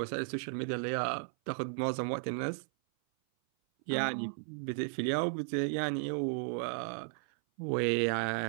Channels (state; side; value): silent; left; 55 dB below the other